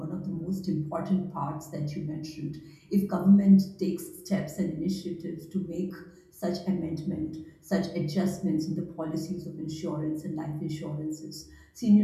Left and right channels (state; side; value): identical; both; correlation 1.00